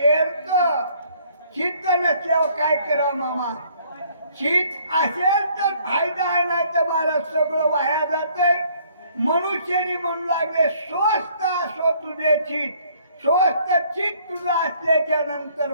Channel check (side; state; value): both; inverted; correlation -0.62